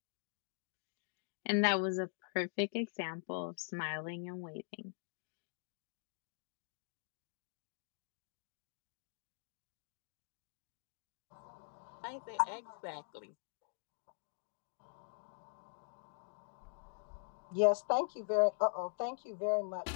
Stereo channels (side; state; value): right; silent; digital silence